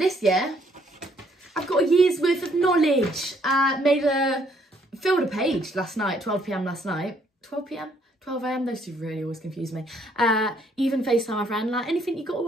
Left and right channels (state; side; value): normal; both; correlation 0.67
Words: year, I've got a year's worth of knowledge. Filled a page last night, 12 PM last night. 12 PM? 12 AM, those two really always confuse me. Even FaceTime my friend, like, anything you got to